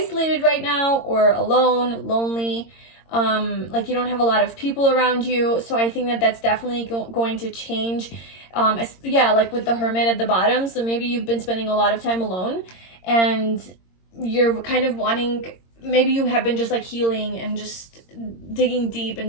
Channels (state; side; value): late; right; 22 ms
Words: right now, or alone, lonely. Like you don't have a lot of people around you. So I think that that's definitely going to change. Yeah, like with the Hermit at the bottom. So maybe you've been spending a lot of time alone, and you're kind of wanting, maybe you have been just like healing and just digging deep